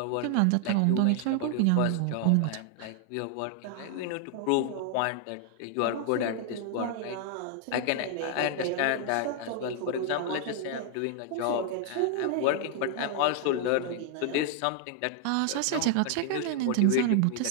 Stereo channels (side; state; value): both; different; correlation 0.00